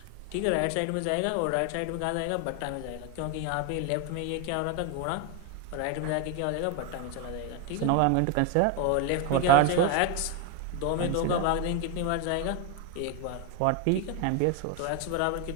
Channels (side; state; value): both; different; correlation 0.01